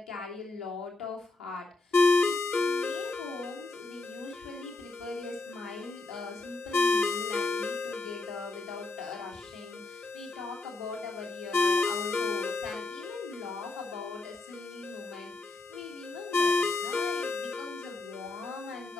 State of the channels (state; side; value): quieter; right; 3.3 dB